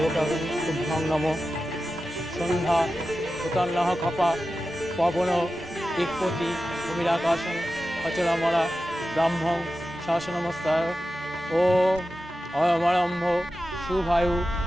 শুভং নমঃ। সন্ধ্যা উতান্নঃ খপা পবন দিকপতি ভূমিরাকাশং অচলামলা ব্রাহ্মং শাসনমস্তায়। ও অয়মারম্ভ শুভায়ু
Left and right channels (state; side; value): normal; both; correlation 0.93